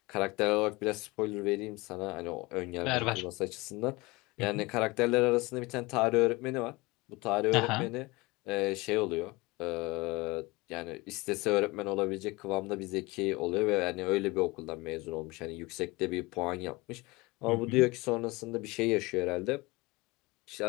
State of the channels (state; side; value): quieter; right; 23.3 dB